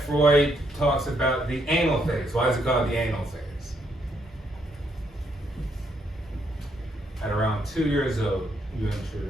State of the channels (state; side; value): normal; both; correlation 0.74